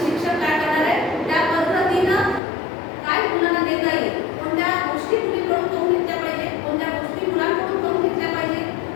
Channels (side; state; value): right; drops out; at 2.4 s